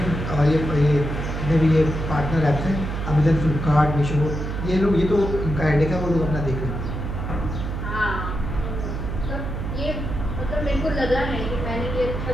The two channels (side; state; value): right; noise; hum, 4 dB below the sound